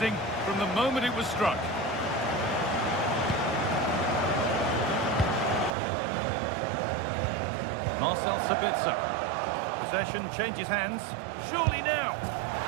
from the moment it was struck. Marcel Sabitzer. Possession changes hands. Surely now.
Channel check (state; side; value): drops out; left; at 5.7 s